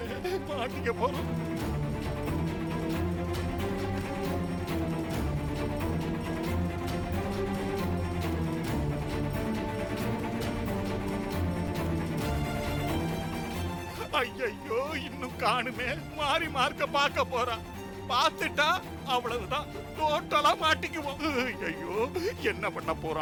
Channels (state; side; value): identical; both; correlation 1.00